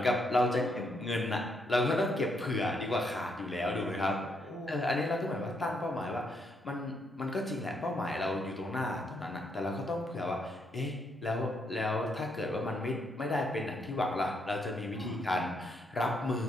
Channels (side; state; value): both; normal; correlation 0.75